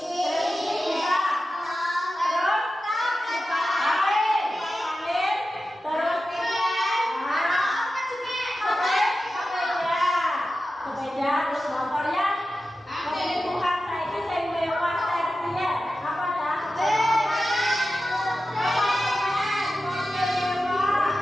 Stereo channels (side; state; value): both; normal; correlation 0.93